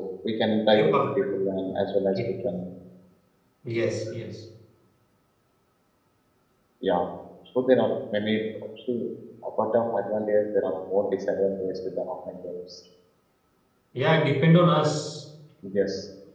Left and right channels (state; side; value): identical; both; correlation 1.00